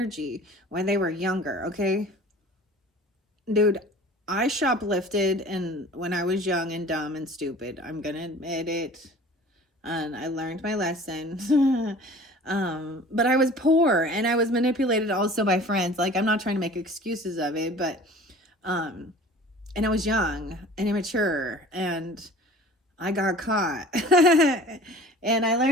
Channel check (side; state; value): both; normal; correlation 0.45